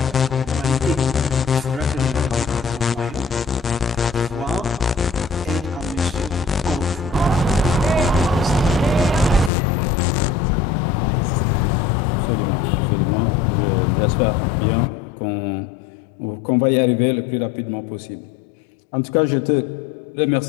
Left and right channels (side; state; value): right; drops out; at 9.5 s